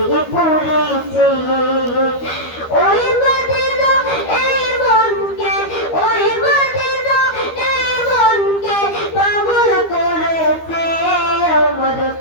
পড়েছে ওই মদিনা এই মনকে ওই মদিনা এই মনকে পাগল করেছে আমার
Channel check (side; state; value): right; late; 13 ms